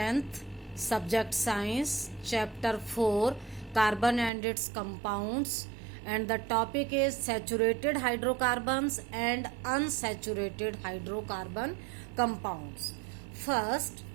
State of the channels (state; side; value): drops out; left; at 4.3 s